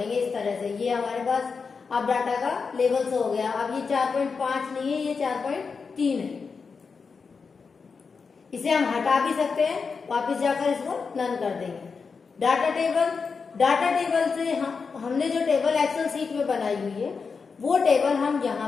इस तरह से। ये हमारे पास अब डाटा का लेवल शो हो गया। अब ये 4.5 नहीं है, ये 4.3 है। इसे हम हटा भी सकते हैं, वापस जाकर इसको नन कर देंगे। डाटा टेबल से हमने जो टेबल एक्सेल सीट में बनाई हुई है वो टेबल हम यहाँ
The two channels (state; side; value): quieter; right; 5.2 dB